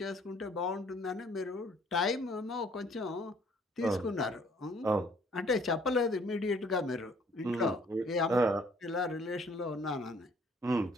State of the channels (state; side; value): normal; both; correlation 0.60